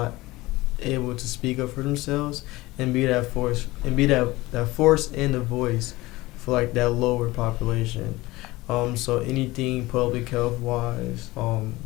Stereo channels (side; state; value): right; quieter; 19.8 dB